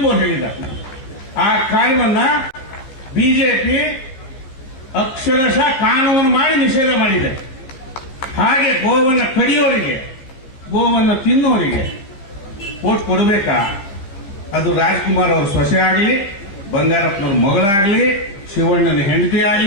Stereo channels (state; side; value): late; right; 15 ms